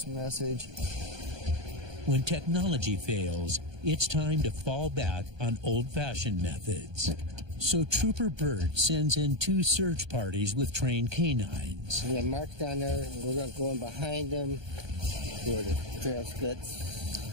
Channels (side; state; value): left; late; 1.2 ms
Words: message. When technology fails, it's time to fall back on old-fashioned methods. So Trooper Bird sends in 2 search parties with trained canines. We have marks down there, and we're going to go in behind them where the trail